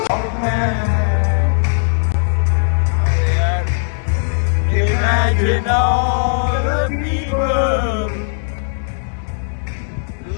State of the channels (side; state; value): right; silent; 68 dB below the other